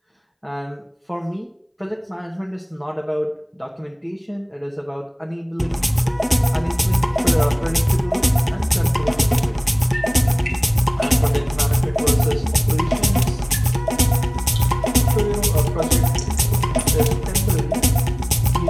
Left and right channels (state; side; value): identical; both; correlation 1.00